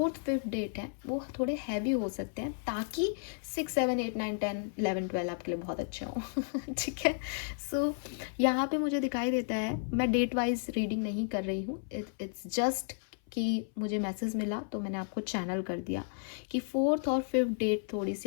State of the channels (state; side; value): silent; right; 56 dB below the other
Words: 5th डेट है वो थोड़े हैवी हो सकते हैं, ताकि 6 7 8 9 10 11 12 आपके लिए बहुत अच्छे हों। ठीक है। सो यहाँ पे मुझे दिखाई देता है, मैं डेट वाइज रीडिंग नहीं कर रही हूँ, इट्स जस्ट कि मुझे मैसेज मिला तो मैंने आपको चैनल कर दिया कि 4th और 5th डेट थोड़ी